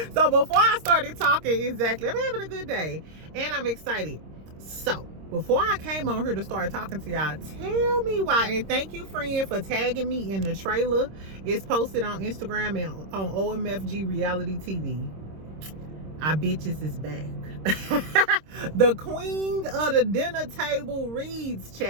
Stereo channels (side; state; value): left; late; 26 ms